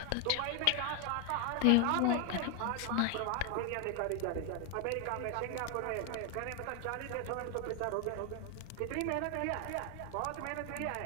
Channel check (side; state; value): both; different; correlation 0.01